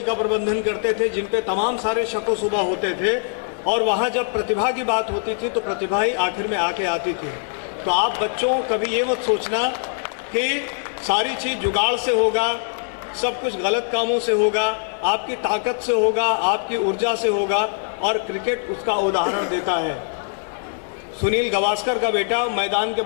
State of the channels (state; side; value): silent; right; 64 dB below the other